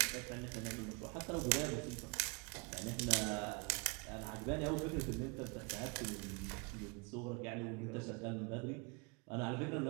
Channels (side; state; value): left; quieter; 32.2 dB